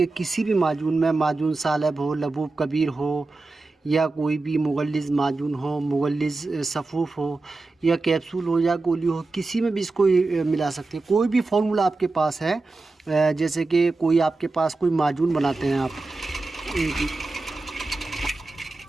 किसी भी माजून में, माजून सालब हो, लबूब कबीर हो, या कोई भी मुगल्लिज़ माजून हो, मुगल्लिज़ सफ़ूफ़ हो, या कैप्सूल हो या गोली हो, किसी में भी इसको मिला सकते हैं। कोई भी फार्मूला आपके पास है, जैसे कि कोई आपके पास कोई माजून बनाते हैं आप,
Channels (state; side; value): quieter; left; 3.5 dB